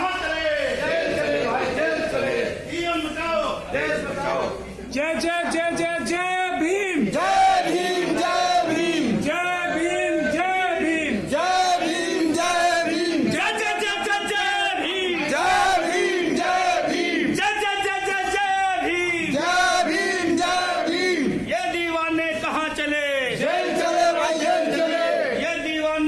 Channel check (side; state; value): both; identical; correlation 1.00